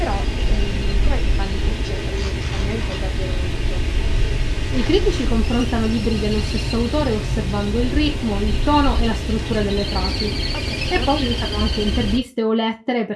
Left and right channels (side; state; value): both; identical; correlation 1.00